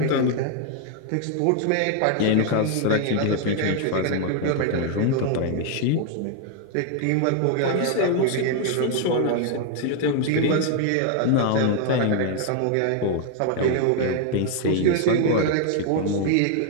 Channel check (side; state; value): both; different; correlation 0.00